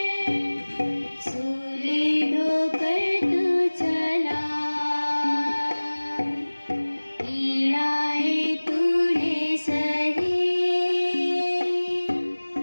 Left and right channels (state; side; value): inverted; both; correlation -1.00